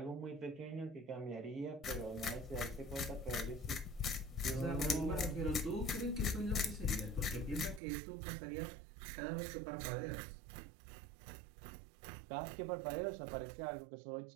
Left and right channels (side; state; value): left; drops out; at 7.8 s